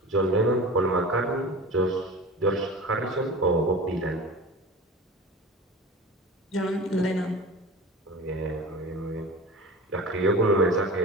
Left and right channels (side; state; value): both; normal; correlation 0.34